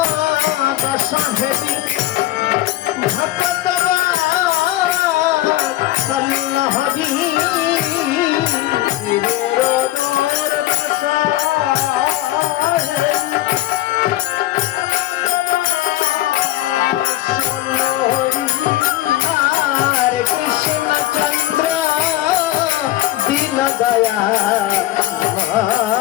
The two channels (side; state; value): right; quieter; 15.4 dB